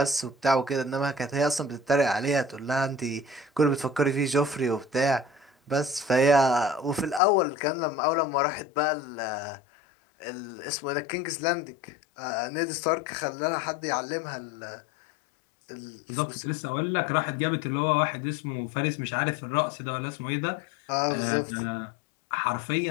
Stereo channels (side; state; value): right; drops out; at 7.2 s